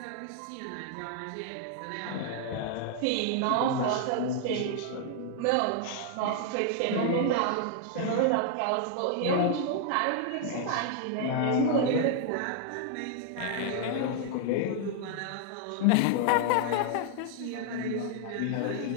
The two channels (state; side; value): different; both; correlation 0.00